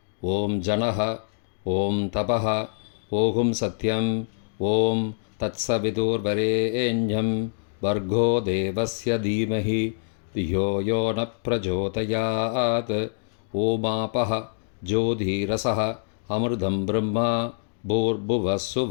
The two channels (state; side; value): silent; right; digital silence